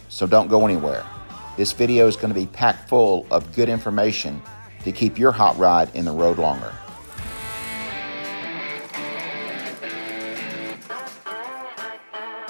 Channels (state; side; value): inverted; both; correlation -1.00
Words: so don't go anywhere. This video is going to be packed full of good information to keep your hot rod in the road longer.